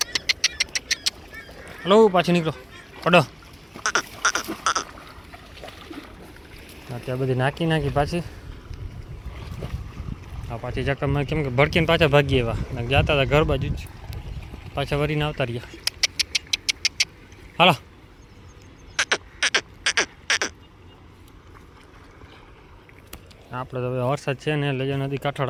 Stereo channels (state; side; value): identical; both; correlation 1.00